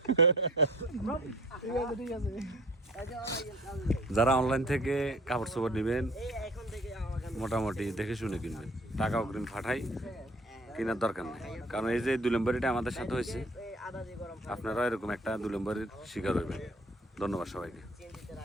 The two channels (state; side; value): normal; both; correlation 0.50